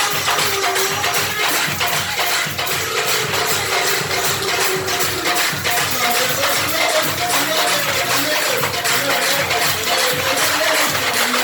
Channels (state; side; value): identical; both; correlation 1.00